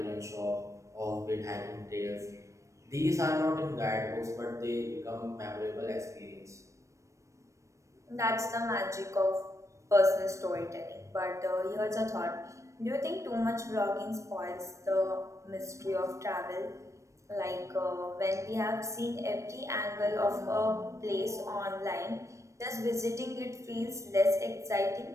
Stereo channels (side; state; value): left; late; 0.15 ms